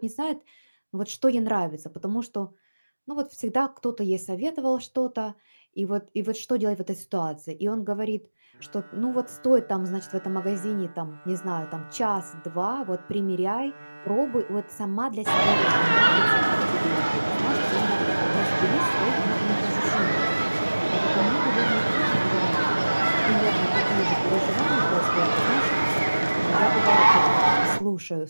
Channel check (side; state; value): both; inverted; correlation -1.00